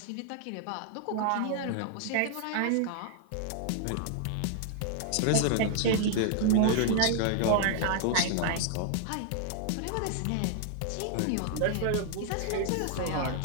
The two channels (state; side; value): different; both; correlation 0.00